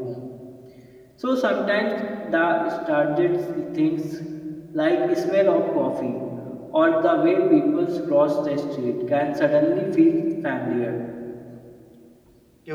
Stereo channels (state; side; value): identical; both; correlation 1.00